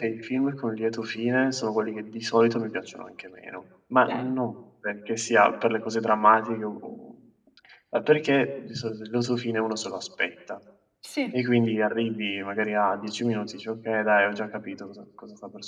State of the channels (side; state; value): both; identical; correlation 1.00